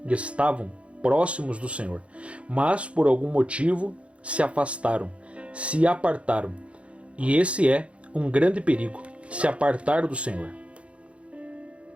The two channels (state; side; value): late; left; 0.061 ms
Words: próximos do Senhor, mas por algum motivo se afastaram, se apartaram. E esse é um grande perigo, se apartar do Senhor,